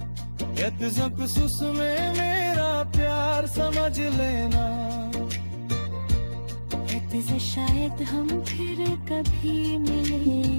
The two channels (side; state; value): both; inverted; correlation -1.00